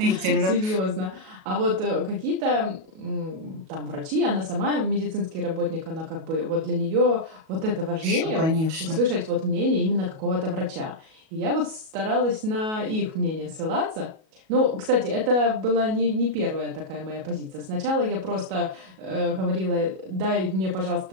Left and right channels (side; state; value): left; late; 37 ms